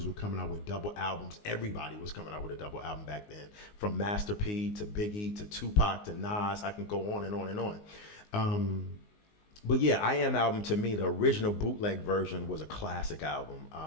were coming out with double albums. Everybody was coming out with a double album back then, from Master P to Biggie to Tupac to Nas. I can go on and on and on. But yeah, I Am album, to me, the original bootleg version was a classic album.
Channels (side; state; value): right; late; 19 ms